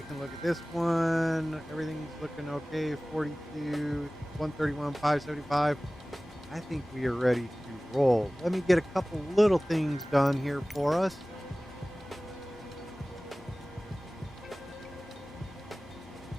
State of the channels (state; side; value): normal; both; correlation 0.98